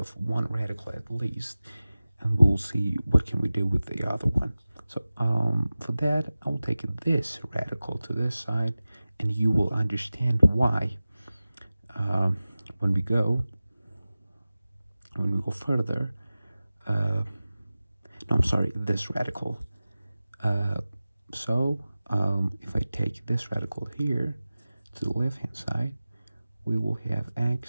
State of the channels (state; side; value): inverted; both; correlation -0.97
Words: one radical at least, and we'll see what can we do with the other one. So for that, I will take this radical to this side, and you will understand why when we go further. No, I'm sorry, this radical. So if I take this radical here to the left hand side, we will have